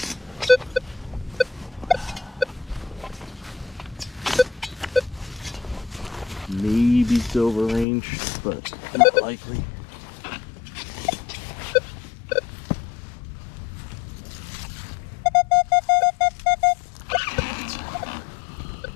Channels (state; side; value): drops out; right; at 7.9 s